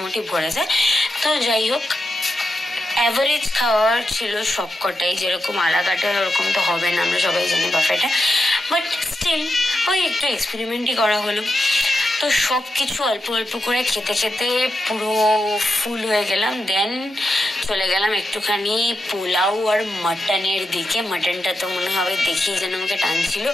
ভরে যায়। তো যাই হোক, অ্যাভারেজ খাওয়ার ছিল সবকটাই, যেরকম আলাকাটা ওরকম তো হবে না, আমরা সবাই জানি বাফেটা, বাট স্টিল ওই একটু এক্সপেরিমেন্টই করা হলো। তো সব কিছু অল্প অল্প করে খেতে খেতে পুরো ফুল হয়ে গেলাম। দেন চলে গেলাম একটুখানি পোলাও আর মাটনের দিকে। মাটনটা তো মনে হবে দেখেই যেন আমাকে টানছিল,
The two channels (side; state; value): both; normal; correlation 0.86